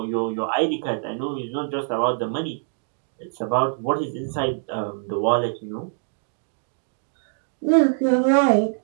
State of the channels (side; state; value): left; silent; digital silence